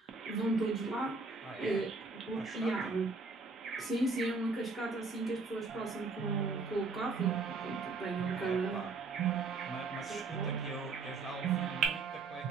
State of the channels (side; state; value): left; quieter; 4.0 dB